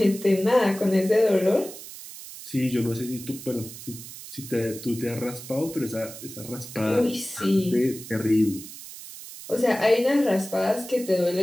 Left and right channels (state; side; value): noise; right; hiss, 13 dB below the sound